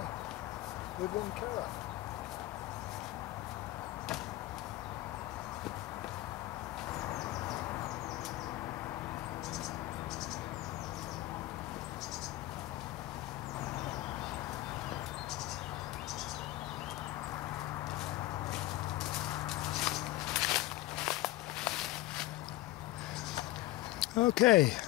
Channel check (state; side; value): quieter; right; 16.9 dB